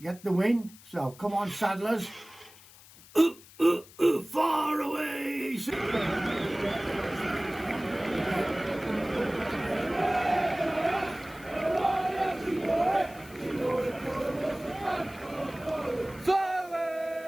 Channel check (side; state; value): left; noise; hiss, 22 dB below the sound